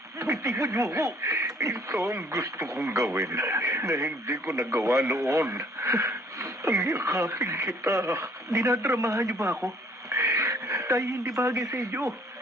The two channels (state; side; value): normal; both; correlation 0.59